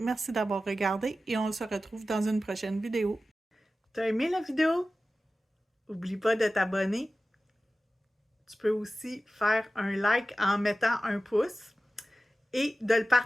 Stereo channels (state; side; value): normal; both; correlation 0.95